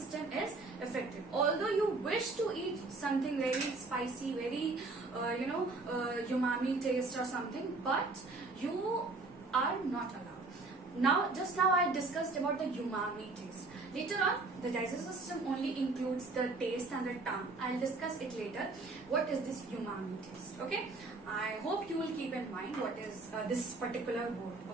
is affected. Although you wish to eat something very spicy, very umami taste or something, but you are not allowed. Just now I discussed about the umami taste. Later on, the digestive system only includes the taste and the tongue. I'll discuss it later. What is this umami taste? Okay. I hope you will keep in mind what is this particular word.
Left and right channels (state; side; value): quieter; left; 3.5 dB